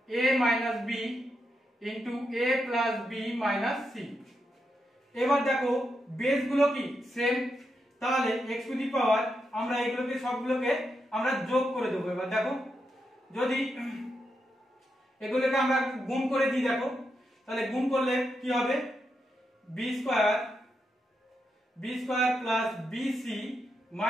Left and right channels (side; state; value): both; normal; correlation 0.84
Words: a minus b into a plus b minus c। এবার দেখো বেস গুলো কি সেম, তাহলে x টু দি পাওয়ার আমরা এগুলোকে সবগুলোকে আমরা যোগ করে দেবো। এবার দেখো যদি এগুলোকে আমরা গুণ করে দিই, দেখো তাহলে গুণ করলে কি হবে b square plus bc